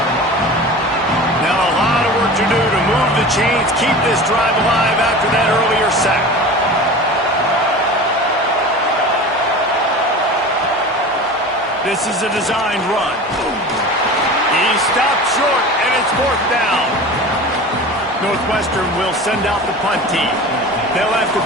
Now a lot of work to do to move the chains, keep this drive alive after that earlier sack. This is a designed run. He stopped short, and it's 4th down. Northwestern will send out the punt team. They'll have to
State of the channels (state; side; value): normal; both; correlation 0.35